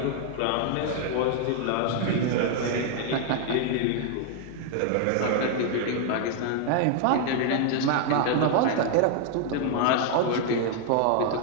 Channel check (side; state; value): both; different; correlation 0.00